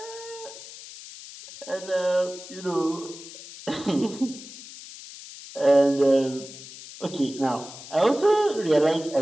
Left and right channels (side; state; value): left; noise; hiss, 15 dB below the sound